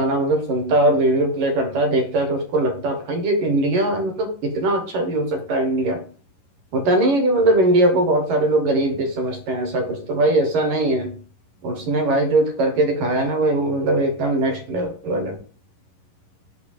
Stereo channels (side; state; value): left; late; 11 ms